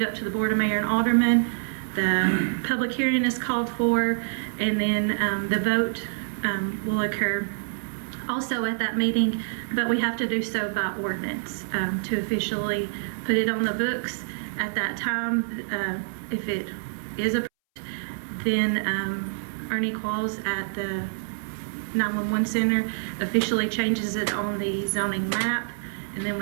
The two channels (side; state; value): left; silent; 61 dB below the other